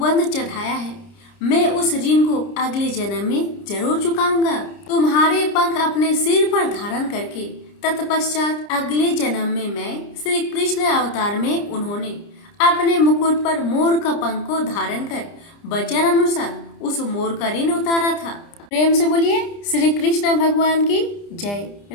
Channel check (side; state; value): right; late; 30 ms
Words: चढ़ाया है, मैं उस ऋण को अगले जन्म में जरूर चुकाऊंगा। तुम्हारे पंख अपने सिर पर धारण करके तत्पश्चात अगले जन्म में मैं श्री कृष्ण अवतार में उन्होंने अपने मुकुट पर मोर का पंख को धारण कर वचन अनुसार उस मोर का ऋण उतारा था। प्रेम से बोलिए श्री कृष्ण भगवान की जय,